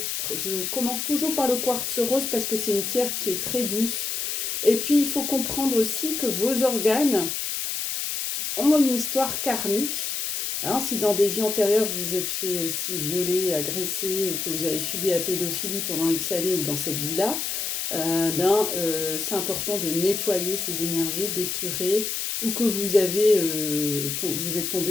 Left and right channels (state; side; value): noise; left; hiss, 2 dB below the sound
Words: commence toujours par le quartz rose parce que c'est une pierre qui est très douce. Et puis, il faut comprendre aussi que vos organes ont une histoire karmique. Hein, si dans des vies antérieures, vous vous êtes fait aussi violer, agresser, ou que vous avez subi la pédophilie pendant X années ou dans cette vie-là, c'est important de nettoyer ces énergies, d'épurer, ou que vous êtes